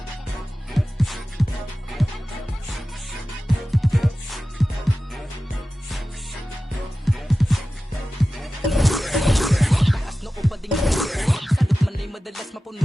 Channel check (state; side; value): normal; both; correlation 0.95